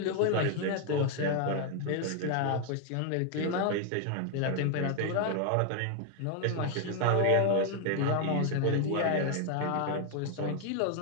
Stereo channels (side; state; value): both; different; correlation 0.00